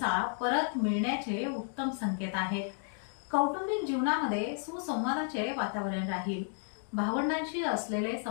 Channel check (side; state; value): right; silent; 56 dB below the other